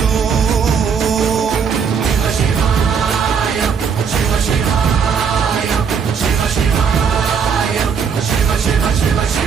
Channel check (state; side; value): quieter; left; 6.5 dB